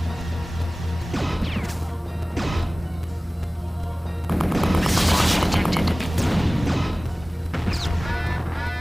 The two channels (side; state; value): both; normal; correlation 0.98